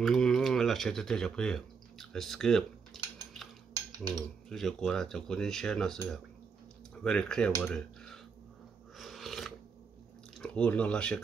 Là sẽ tới chụp here. Let's skip. Chứ giờ qua là chụp con share nó sẽ very clear vào đây. Nó là sẽ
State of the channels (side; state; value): left; quieter; 5.6 dB